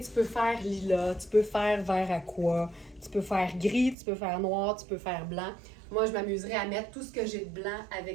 peux faire lilas, tu peux faire vert aqua, tu peux faire gris, tu peux faire noir, tu peux faire blanc. Moi, je m'amuserais à mettre tout ce que j'ai de blanc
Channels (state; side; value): drops out; left; at 4.0 s